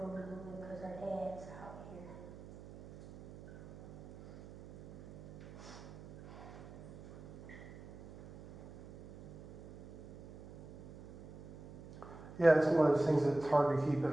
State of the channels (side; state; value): right; noise; hum, 16 dB below the sound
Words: because her dad's out here. Yeah, it's one of those things that's hard to keep